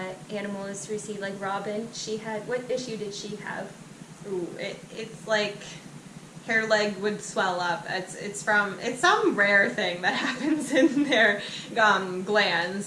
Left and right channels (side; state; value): both; identical; correlation 1.00